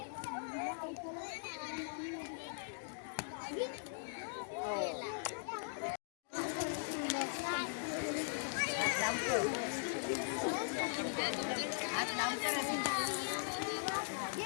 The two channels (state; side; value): silent; right; digital silence